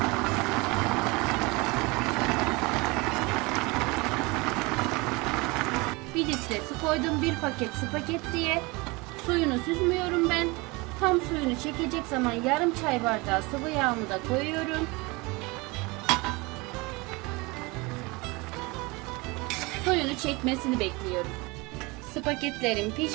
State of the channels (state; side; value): quieter; left; 25.2 dB